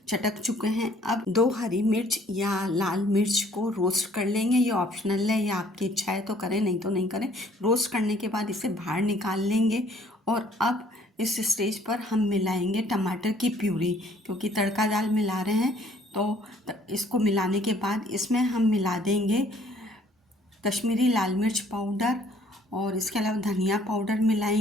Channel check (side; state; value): both; normal; correlation 0.60